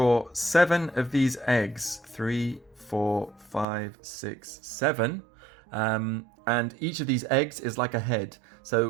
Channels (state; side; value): drops out; left; at 3.7 s